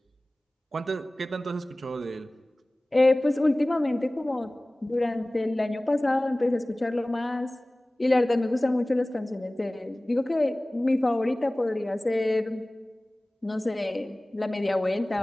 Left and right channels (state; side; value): normal; both; correlation 0.98